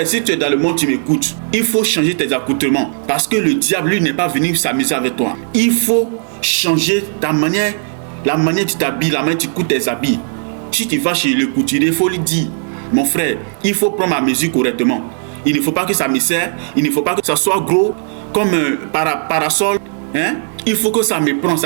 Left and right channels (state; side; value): silent; left; 59 dB below the other